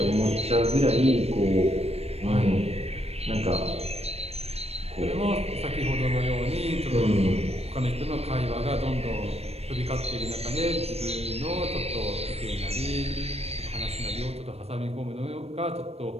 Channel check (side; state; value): left; late; 0.30 ms